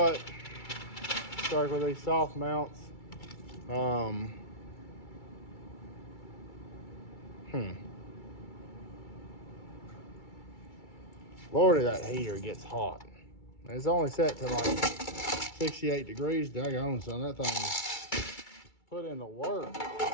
start with these soft mounts. Lordy, that heater gets hot. It's only set to like 68 degrees. Daggone, son, that thing put in the work.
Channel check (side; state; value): right; late; 2.3 ms